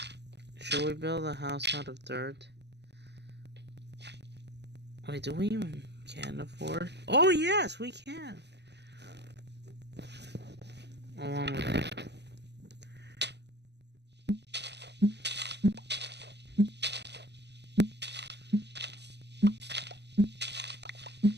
Should we build a house out of dirt? Wait, do we even can afford? Oh yes, we can! Along with it.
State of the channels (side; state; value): left; late; 0.50 ms